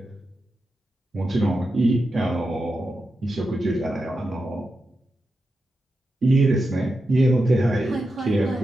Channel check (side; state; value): both; normal; correlation 0.89